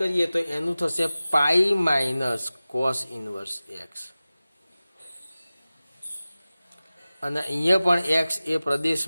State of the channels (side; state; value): both; inverted; correlation -0.97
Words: તો એનું થશે π - cos ઇન્વર્સ x. અને અહીંયા પણ x એ